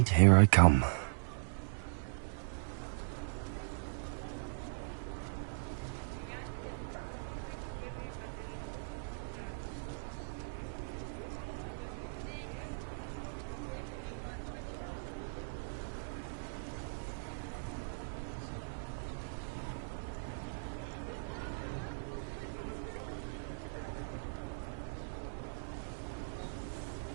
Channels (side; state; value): left; silent; digital silence